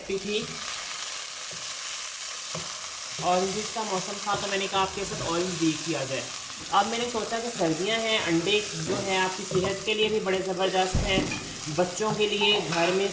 थी। ऑरेंज का मौसम था तो मैंने कहा आपके साथ ऑरेंज भी किया जाए। अब मैंने सोचा कि सर्दियां हैं, अंडे जो है आपकी सेहत के लिए भी बड़े ज़बरदस्त हैं, बच्चों के लिए घर में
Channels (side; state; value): both; identical; correlation 1.00